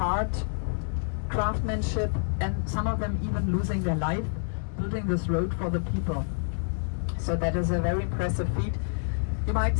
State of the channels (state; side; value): silent; right; digital silence